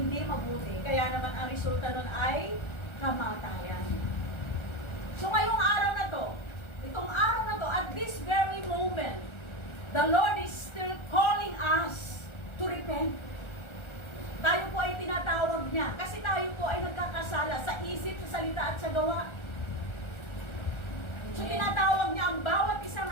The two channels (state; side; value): late; right; 1.3 ms